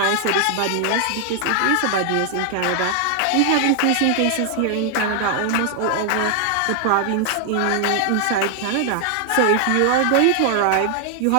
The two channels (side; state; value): both; different; correlation 0.00